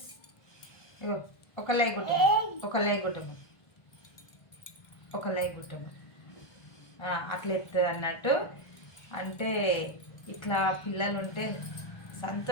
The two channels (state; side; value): late; right; 1.5 ms